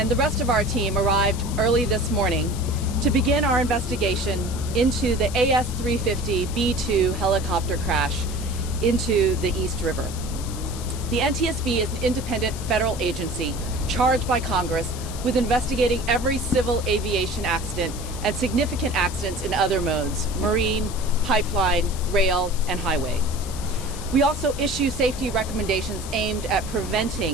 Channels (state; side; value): noise; left; hiss, 13 dB below the sound